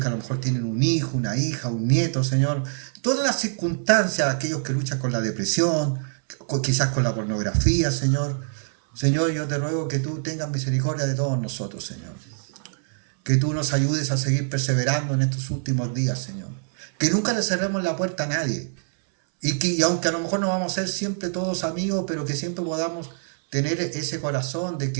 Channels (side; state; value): left; silent; 62 dB below the other